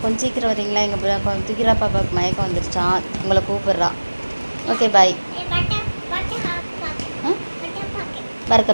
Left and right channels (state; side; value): inverted; both; correlation -1.00